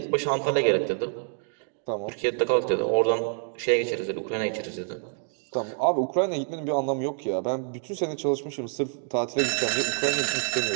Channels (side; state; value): left; silent; 55 dB below the other